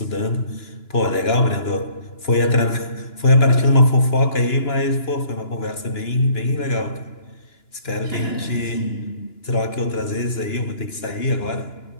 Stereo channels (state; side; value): late; right; 2.9 ms